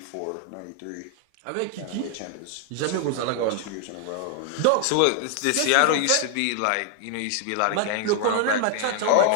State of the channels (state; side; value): different; both; correlation 0.00